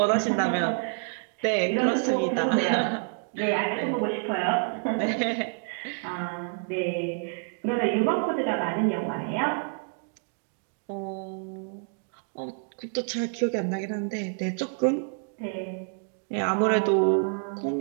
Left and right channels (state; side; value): silent; left; 56 dB below the other